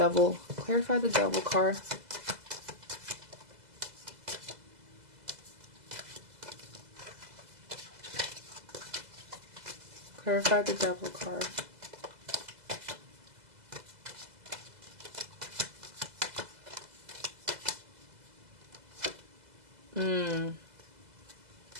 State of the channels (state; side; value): late; left; 2.0 ms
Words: card. Clarify the Devil card.